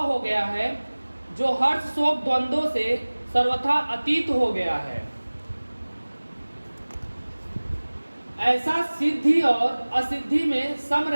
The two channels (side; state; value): both; inverted; correlation -1.00